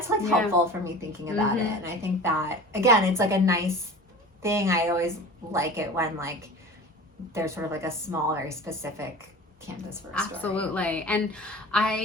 like helpful for me thinking about it. And I think that, again, it's like a nice thing. I always like it when like there's sort of like a small, very specific canvas for a story. Absolutely. And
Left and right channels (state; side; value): normal; both; correlation 0.37